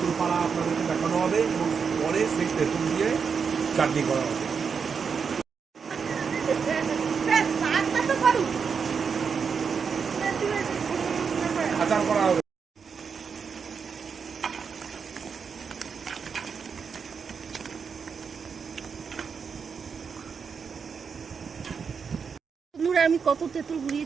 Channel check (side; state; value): left; quieter; 6.0 dB